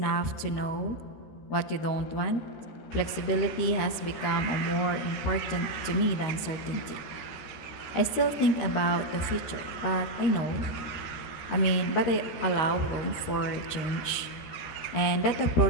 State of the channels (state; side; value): late; right; 13 ms